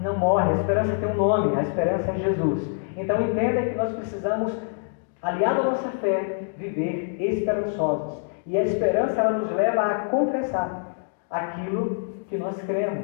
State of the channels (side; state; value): right; silent; digital silence